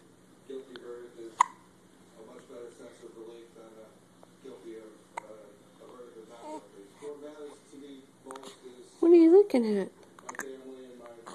What are you looking at?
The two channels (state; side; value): identical; both; correlation 1.00